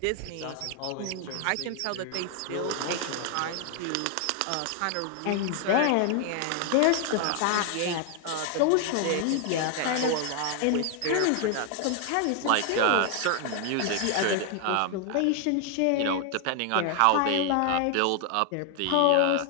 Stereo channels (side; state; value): both; different; correlation 0.00